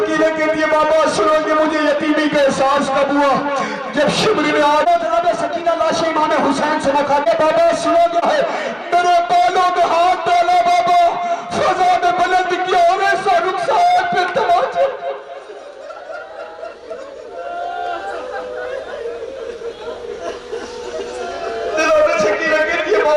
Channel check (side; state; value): both; identical; correlation 1.00